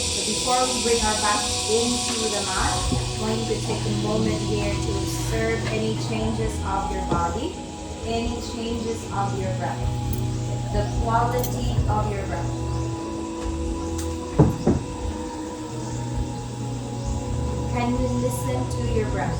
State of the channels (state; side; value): identical; both; correlation 1.00